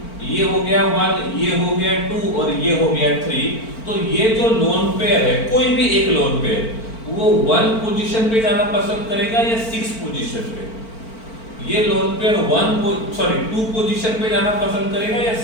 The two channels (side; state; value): right; late; 4.4 ms